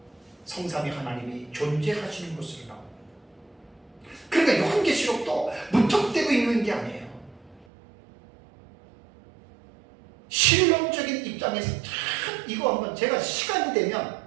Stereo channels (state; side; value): drops out; left; at 7.7 s